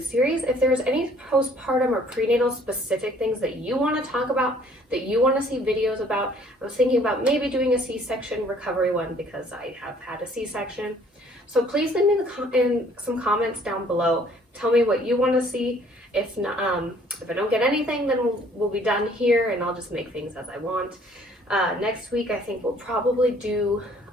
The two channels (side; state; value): both; normal; correlation 0.58